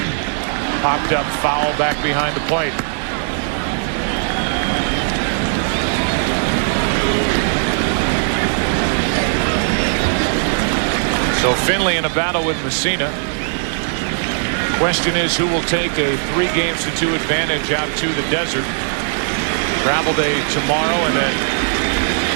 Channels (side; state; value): left; silent; digital silence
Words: Popped up foul back behind the plate. So Finley in a battle with Messina. Question is, who will take a 3-games-to-2 advantage out to the desert? Travel day tomorrow, and then